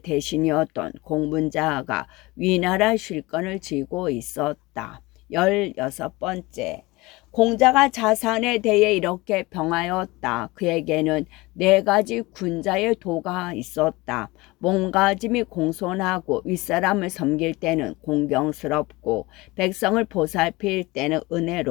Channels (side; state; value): right; quieter; 22.1 dB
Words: 공문자가 위나라 쉴건을 쥐고 있었다. 16번째. 공자가 자산에 대해 이렇게 병하였다. 그에게는 4가지 군자의 도가 있었다. 몸가짐이 공손하고 윗사람을 섬길 때는 공경스럽고 백성을 보살필 때는